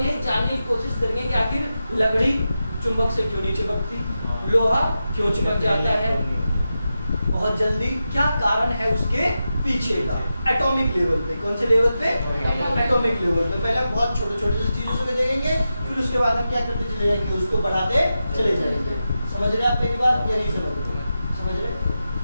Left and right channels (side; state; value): both; inverted; correlation -0.90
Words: जानने की कोशिश करेंगे कि आखिर लकड़ी चुंबक से क्यों नहीं चिपकती, लोहा क्यों चिपक जाता है बहुत जल्दी, क्या कारण है उसके पीछे का। एटॉमिक लेवल पे, कौन से लेवल पे? एटॉमिक लेवल पे। पहले हम बहुत छोटे छोटे चीजों से देखेंगे, फिर उसके बाद हम क्या करते चले जाएंगे, उसको बढ़ाते चले जाएंगे। समझ रहे आप मेरी बात या नहीं समझ रहे? समझ रहे?